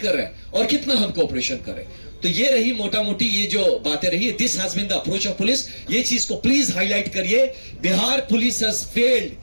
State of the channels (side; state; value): both; inverted; correlation -1.00